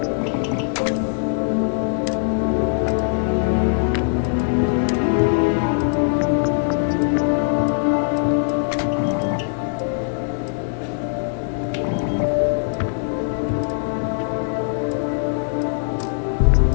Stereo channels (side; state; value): right; silent; digital silence